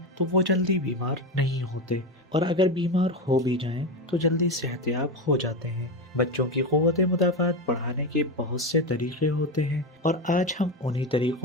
تو وہ جلدی بیمار نہیں ہوتے، اور اگر بیمار ہو بھی جائیں تو جلدی صحت یاب ہو جاتے ہیں۔ بچوں کی قوت مدافعت بڑھانے کے بہت سے طریقے ہوتے ہیں، اور آج ہم انہی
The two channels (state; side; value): normal; both; correlation 0.16